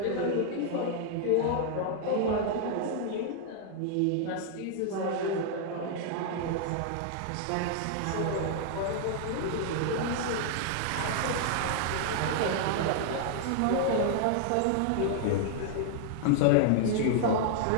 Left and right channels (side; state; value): both; different; correlation -0.01